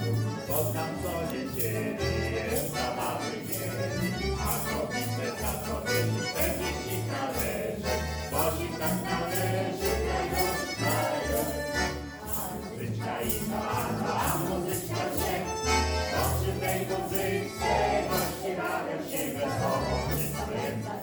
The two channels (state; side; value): identical; both; correlation 1.00